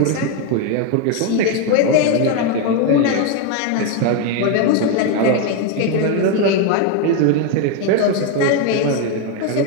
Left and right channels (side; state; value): both; different; correlation 0.02